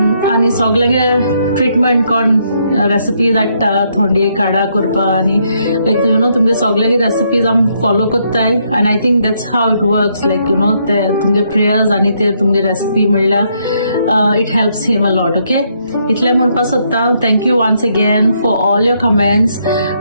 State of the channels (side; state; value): both; inverted; correlation -0.74